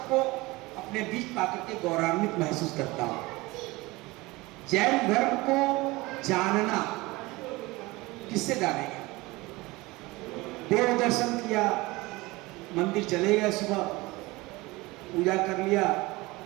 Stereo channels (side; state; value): left; quieter; 21.9 dB